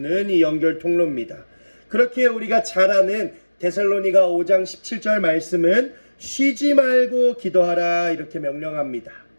이 연결 통로입니다. 그렇게 우리가 잘 아는 데살로니가 5장 17절 말씀은 쉬지 말고 기도하라 이렇게 명령합니다.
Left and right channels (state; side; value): inverted; both; correlation -1.00